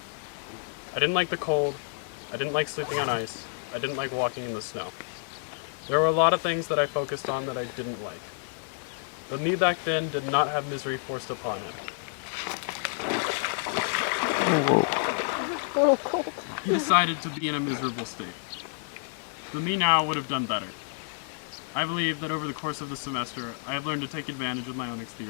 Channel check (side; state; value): right; silent; digital silence